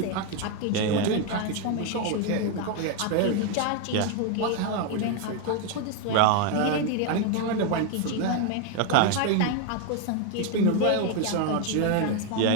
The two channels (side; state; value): both; different; correlation 0.01